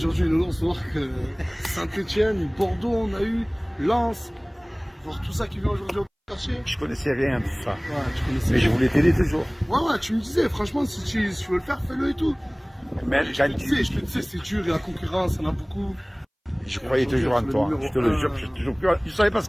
Nounours, voir que Saint-Etienne, Bordeaux, on a eu, Lens, voir tout ça qui vient aujourd'hui au quartier. Je connaissais rien de ça. Ouais, tu connaissais. Mais je voulais t'aider toujours. Ouais, tu me disais, franchement, si tu veux le faire, fais-le et tout. Même Je te disais, c'est dur, il y a la concurrence, il y en a beaucoup. Je croyais toujours en toi. Je te le jure, je ne savais pas ce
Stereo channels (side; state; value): both; identical; correlation 1.00